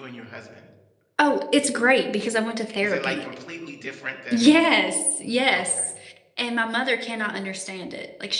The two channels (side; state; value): both; identical; correlation 1.00